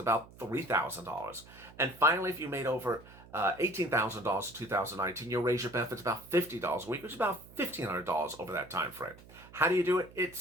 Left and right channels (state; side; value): noise; right; hum, 21 dB below the sound